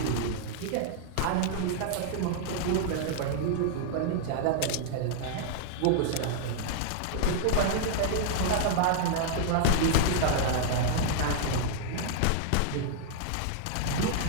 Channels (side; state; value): both; different; correlation -0.01